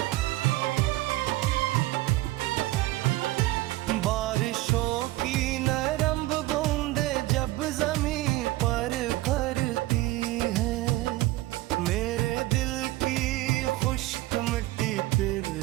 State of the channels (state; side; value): quieter; left; 17.9 dB